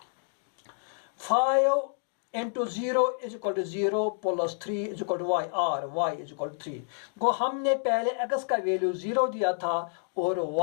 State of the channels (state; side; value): silent; right; digital silence